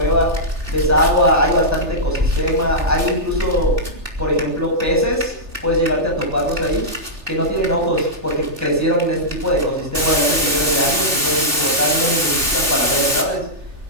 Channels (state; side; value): late; left; 2.6 ms